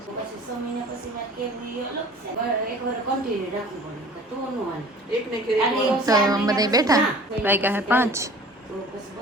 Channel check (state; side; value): normal; both; correlation 0.46